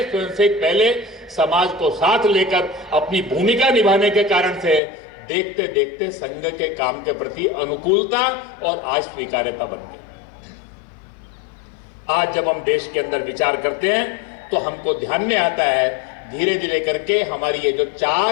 स्वयंसेवक पहले, समाज को साथ लेकर अपनी भूमिका निभाने के कारण से देखते देखते संघ के काम के प्रति अनुकूलता और आज स्वीकार्यता बन गई। आज जब हम देश के अंदर विचार करते हैं तो हमको ध्यान में आता है धीरे धीरे करके हमारी ये जो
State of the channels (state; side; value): drops out; right; at 4.8 s